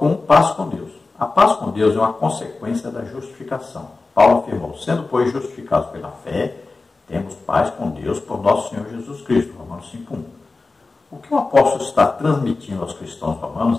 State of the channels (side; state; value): right; quieter; 3.7 dB